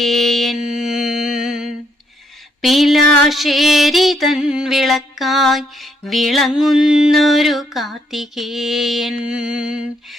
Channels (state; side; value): normal; both; correlation 0.73